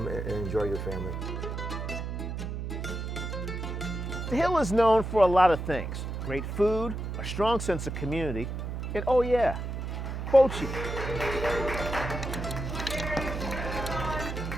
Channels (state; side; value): noise; right; hum, 4 dB below the sound